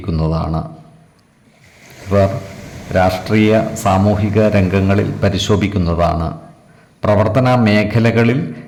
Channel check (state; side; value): identical; both; correlation 1.00